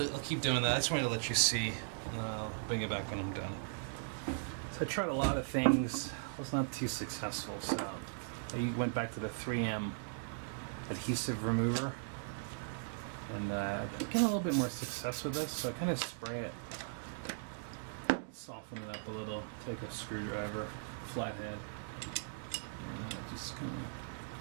I'll keep doing that. I just wanted to let you see, and I'll bring it back when I'm done. So I tried a lot of things. I was not too successful, so I went back to the 3M adhesive remover, and I'm getting a little bit more success with this. So I kind of spray it, soften it up a little, take a screwdriver, flathead, and just kind of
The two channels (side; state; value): left; silent; digital silence